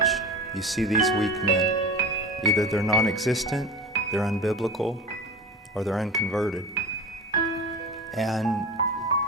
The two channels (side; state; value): both; normal; correlation 0.31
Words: you see these weak men. Either they're non-existent, they're unbiblical, or they're unconverted. And